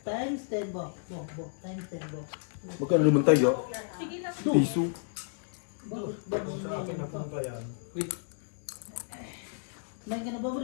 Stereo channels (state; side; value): silent; right; digital silence